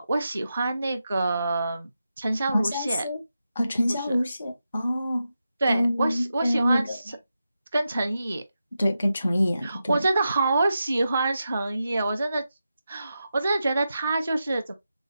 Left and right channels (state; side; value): inverted; both; correlation -0.89